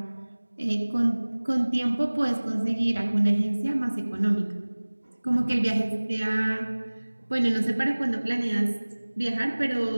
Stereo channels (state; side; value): inverted; both; correlation -1.00